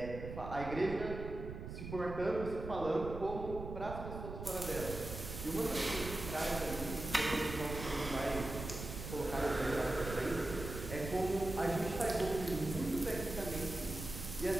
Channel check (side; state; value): right; noise; rumble, 8 dB below the sound